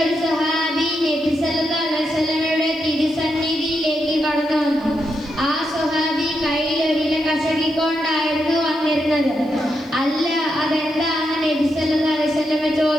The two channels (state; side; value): noise; right; hiss, 30 dB below the sound